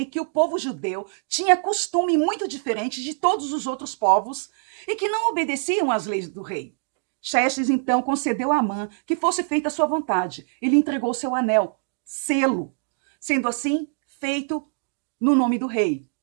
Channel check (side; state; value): left; silent; digital silence